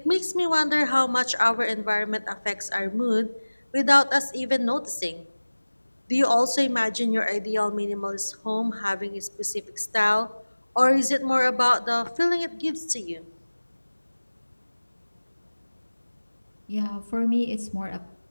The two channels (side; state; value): both; inverted; correlation -1.00